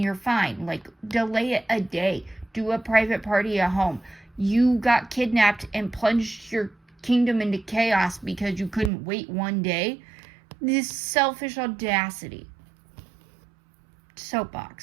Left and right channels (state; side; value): drops out; left; at 8.9 s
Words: you're fine. Like, delay it a day. Do a private party at home. You got kidnapped and plunged your kingdom into chaos because you couldn't wait one day. This selfish audacity.